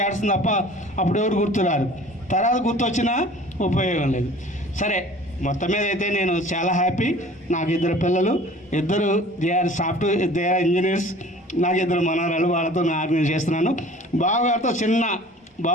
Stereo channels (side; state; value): both; normal; correlation 0.46